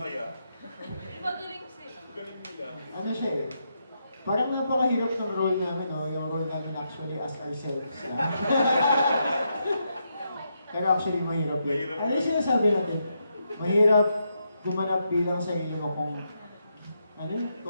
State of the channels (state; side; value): inverted; both; correlation -0.81